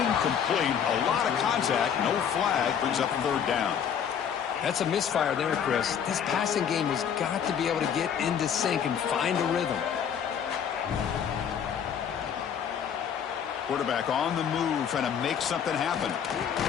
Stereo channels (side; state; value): right; quieter; 8.1 dB